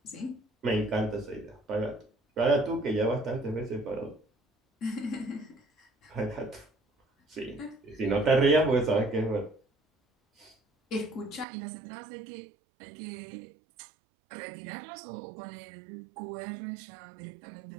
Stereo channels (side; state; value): left; drops out; at 11.5 s